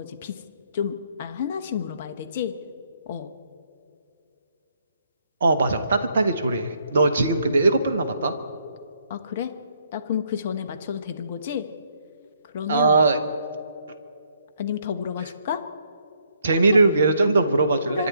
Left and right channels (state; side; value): inverted; both; correlation -0.71